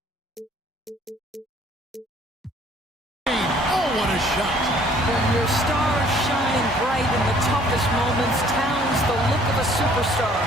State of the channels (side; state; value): both; normal; correlation 0.58